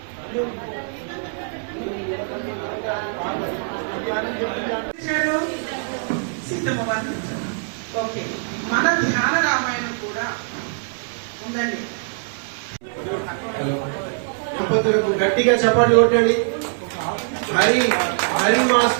Okay, మన ధ్యాన రామాయణం కూడా ఉందండి. దంపతులకు గట్టిగా చప్పట్లు కొట్టండి. హరి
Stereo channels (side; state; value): left; silent; 64 dB below the other